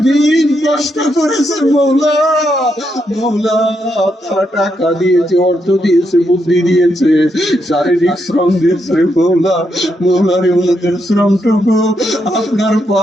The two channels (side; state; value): both; normal; correlation 0.80